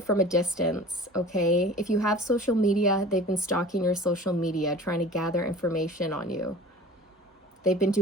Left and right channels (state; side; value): normal; both; correlation 0.41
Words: a distance, okay? If you have social media, they've been stalking your social media, trying to gather information on you. They've been